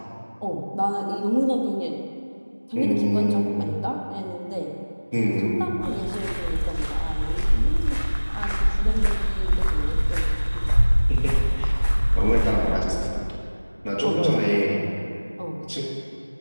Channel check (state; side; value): inverted; both; correlation -1.00